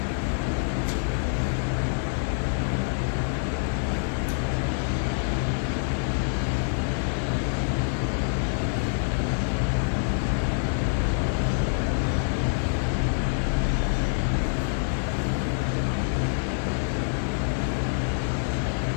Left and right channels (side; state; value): right; silent; digital silence